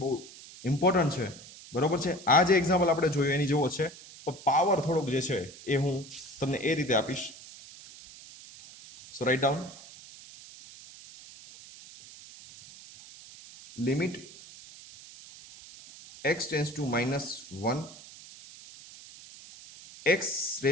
ઇમ્પોર્ટન્ટ છે બરોબર છે આ જે એક્ઝામ્પલ આપણે જોયું એની જેવો છે પણ પાવર થોડોક જે છે એ હું તમને એ રીતે આપીશ so write down limit x tends to minus 1 x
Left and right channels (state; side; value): noise; right; hiss, 18 dB below the sound